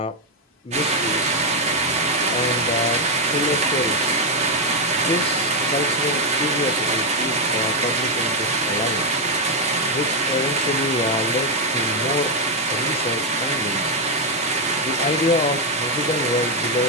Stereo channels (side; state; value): both; normal; correlation 0.03